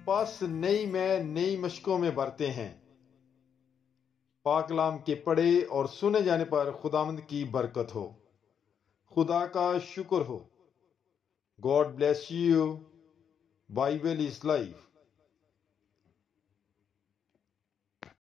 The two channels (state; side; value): quieter; right; 7.9 dB